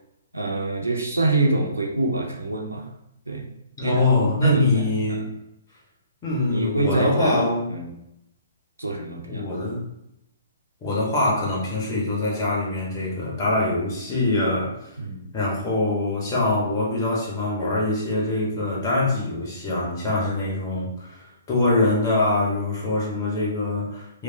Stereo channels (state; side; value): inverted; both; correlation -0.53